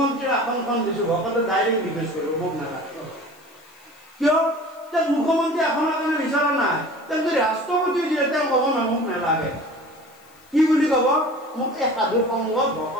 আসনখন দিছো, ভকতে ডাইৰেক্ট ৰিকুৱেষ্ট কৰিব, মোক নালাগে। কিয়? যে মুখ্যমন্ত্ৰী আসনৰ কাৰণে বিচৰা নাই, তেওঁ যদি ৰাষ্ট্ৰপতি দিয়ে তেওঁ ক'ব না মোক নালাগে। কি বুলি ক'ব? মোক এই সাধু সংগত,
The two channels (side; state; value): left; noise; hiss, 28 dB below the sound